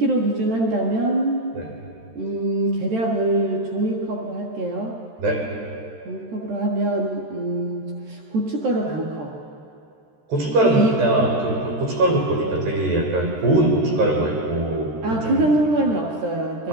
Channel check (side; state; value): left; late; 13 ms